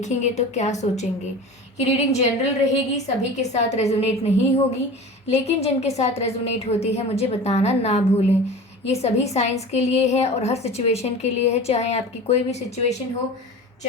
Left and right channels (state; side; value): normal; both; correlation 0.35